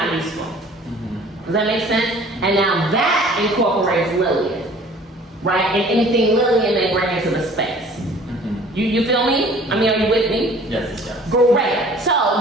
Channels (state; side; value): normal; both; correlation 0.50